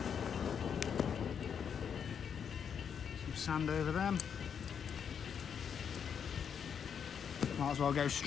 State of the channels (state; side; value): quieter; right; 7.5 dB